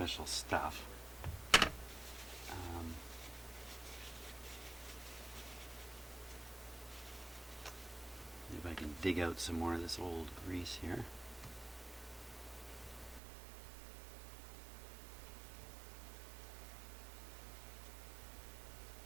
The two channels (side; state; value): left; drops out; at 13.2 s